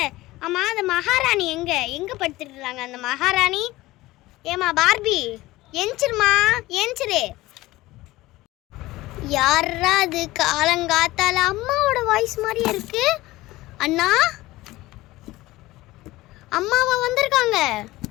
ஆமாம், அந்த மகாராணி எங்கே படுத்துட்டுருக்காங்க? அந்த மகாராணி ஏமா பார்பி, எஞ்சிருமா எஞ்சிரு. யாரா அது காலங்காத்தால? அம்மாவோட வாய்ஸ் மாதிரியே இருக்கு. அண்ணா, அம்மாவா வந்திருக்காங்க?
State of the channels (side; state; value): right; quieter; 18.3 dB